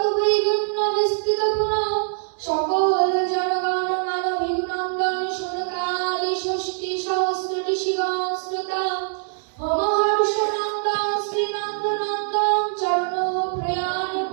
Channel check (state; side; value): silent; left; 62 dB below the other